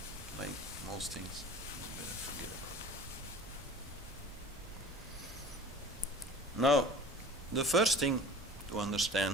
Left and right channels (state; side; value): normal; both; correlation 0.42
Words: like most things. Better forget about it. Now, the first thing to